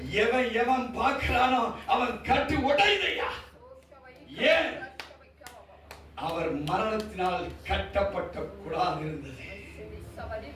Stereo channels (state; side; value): identical; both; correlation 1.00